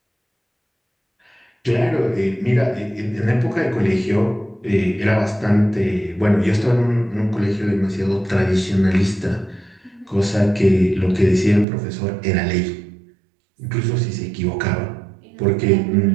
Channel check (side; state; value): left; drops out; at 11.7 s